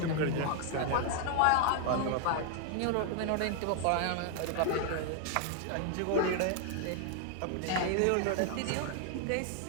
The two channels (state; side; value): different; both; correlation 0.00